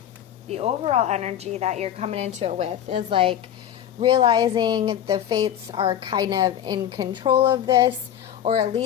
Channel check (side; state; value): right; quieter; 10.5 dB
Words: the overall energy that you're coming into it with is like realizing the fates are kind of in control of this, or at